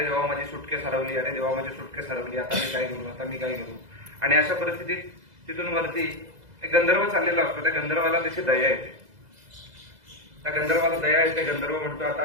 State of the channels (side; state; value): left; late; 2.0 ms